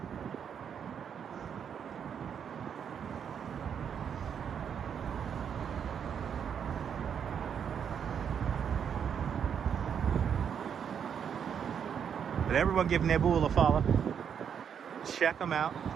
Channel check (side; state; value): left; quieter; 7.8 dB